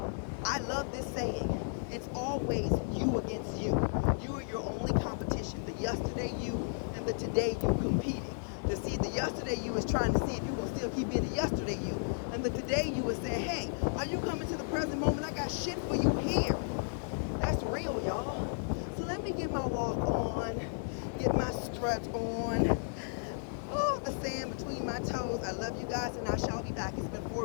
I love this saying. It's always you against you. You are your only competition. The yesterday you and the today you competing. To see, the yesterday you is trying to see if you're going to still keep being the yesterday you. And the today you is saying, hey, are you coming to the present moment? I got shit for you here. That's real, y'all. So let me get my walk on, get my strut on. Oh, the sand between my toes. I love you guys, and I shall be back. It's been 4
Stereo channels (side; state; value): right; silent; digital silence